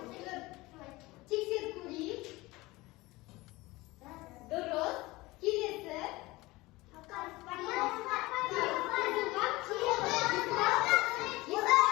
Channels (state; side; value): quieter; right; 20.9 dB